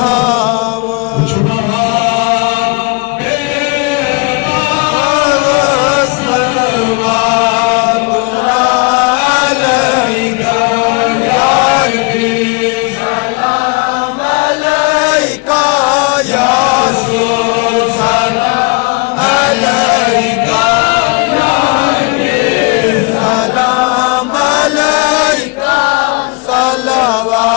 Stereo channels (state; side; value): quieter; right; 29.9 dB